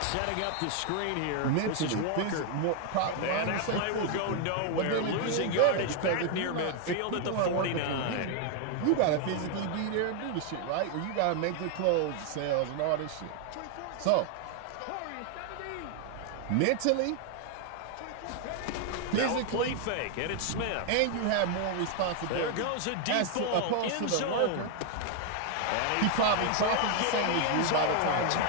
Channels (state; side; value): different; both; correlation 0.00